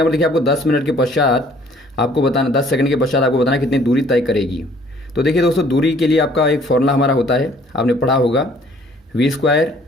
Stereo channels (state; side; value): normal; both; correlation 0.58